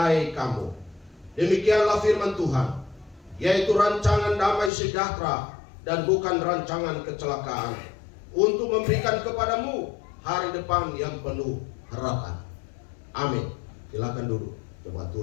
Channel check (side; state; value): right; drops out; at 4.7 s